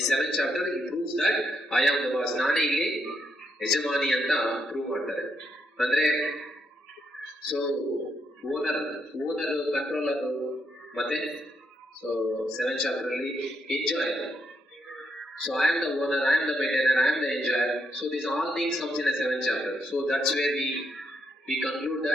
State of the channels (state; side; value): normal; both; correlation 0.78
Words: 7th chapter, he proves that I am the boss. Nane illi yajamani anta prove ಮಾಡ್ತಾರೆ. ಅಂದ್ರೆ owner controller ಮತ್ತೆ 7th chapter ಅಲ್ಲಿ enjoyer. So I am the owner, I am the maintainer, I am the enjoyer. So these all things comes in the 7th chapter. So that's where we conclude